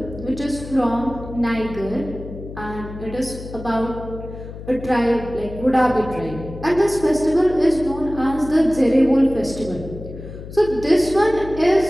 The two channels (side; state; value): left; noise; hum, 12 dB below the sound